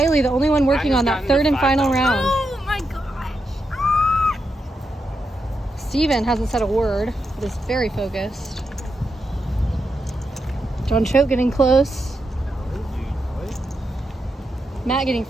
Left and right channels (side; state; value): both; normal; correlation 0.85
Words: the only one working on that third and final round. Oh my gosh. Steven hasn't said a word, but is very focused. John Choate getting close. Matt getting